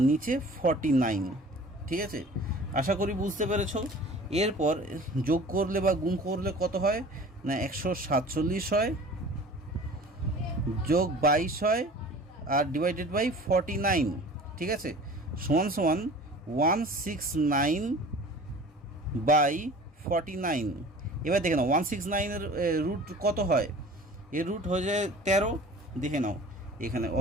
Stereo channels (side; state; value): both; normal; correlation 0.43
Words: নিচে 49, ঠিক আছে। আশা করি বুঝতে পেরেছ। এরপর যোগ করলে বা গুণ করলে কত হয় না 147 হয়, যোগ 22 হয়, আর ডিভাইডেড বাই 49, ঠিক আছে, সমান সমান 169 বাই 49। এবার দেখে নাও 169-এর রুট কত হয়, এর রুট হয়ে যায় 13, দেখে নাও এখানে।